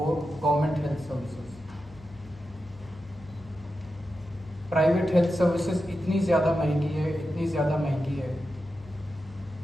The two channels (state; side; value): normal; both; correlation 0.90